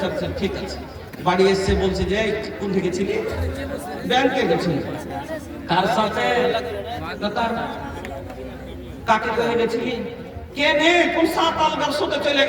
আচ্ছা ঠিক আছে বাড়ি এসে বলছে যে কোন থেকে ছিলি ব্যাংকে গেছিলি কার সাথে তার কাকে কই গেছিলি কে নে কোন সাত আলগার সাথে চলে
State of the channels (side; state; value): both; identical; correlation 1.00